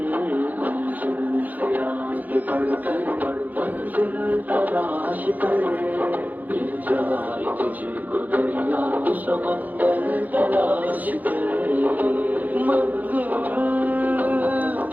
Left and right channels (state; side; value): late; left; 0.081 ms